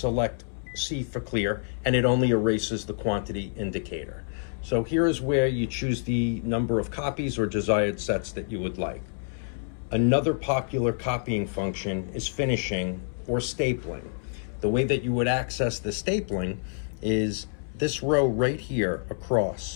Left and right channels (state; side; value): silent; right; 60 dB below the other